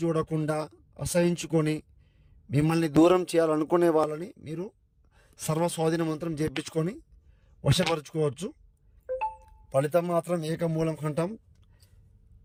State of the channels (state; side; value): identical; both; correlation 1.00